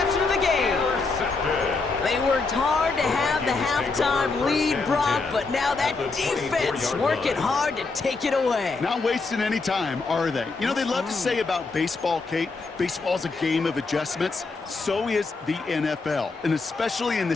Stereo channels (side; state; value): right; quieter; 4.0 dB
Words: of the game. They worked hard to have the halftime lead, Brock, but now that defense working hard to take it away. Not wasting any time, are they? You know, they love to say about baseball, Kate, baseball's a game of adjustments. So is the NFL, and especially in the